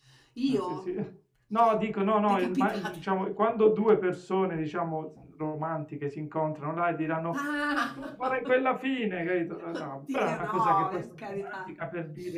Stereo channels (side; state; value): both; identical; correlation 1.00